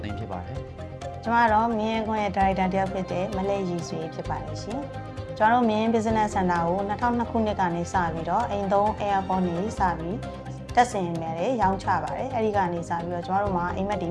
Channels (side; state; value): both; identical; correlation 1.00